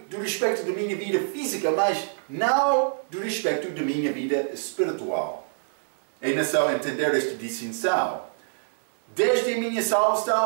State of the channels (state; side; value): silent; left; digital silence